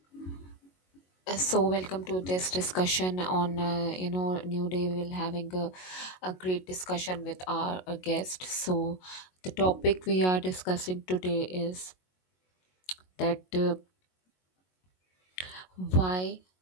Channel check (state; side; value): late; right; 22 ms